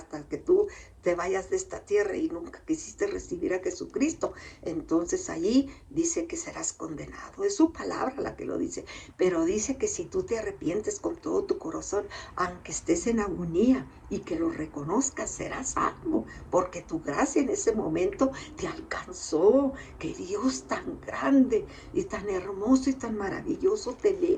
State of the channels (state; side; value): identical; both; correlation 1.00